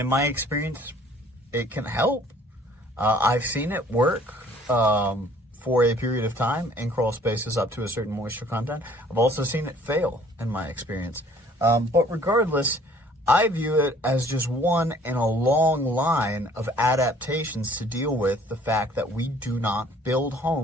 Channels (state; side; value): normal; both; correlation 0.56